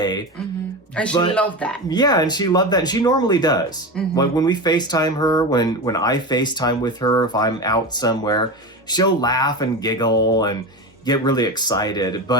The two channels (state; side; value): normal; both; correlation 0.23